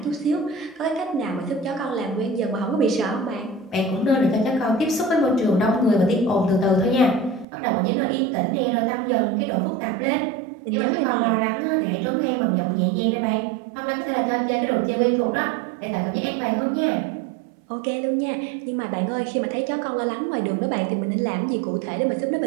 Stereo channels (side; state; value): left; drops out; at 7.5 s